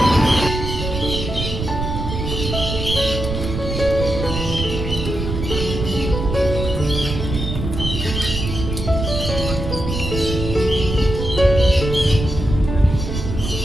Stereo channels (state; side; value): noise; right; rumble, 4 dB below the sound